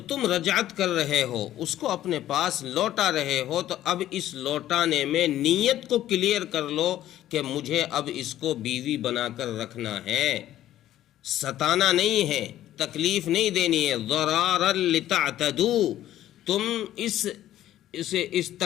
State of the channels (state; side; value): quieter; right; 13.0 dB